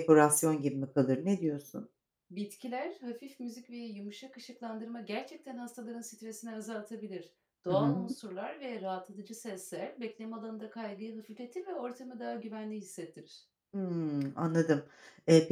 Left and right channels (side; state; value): both; identical; correlation 1.00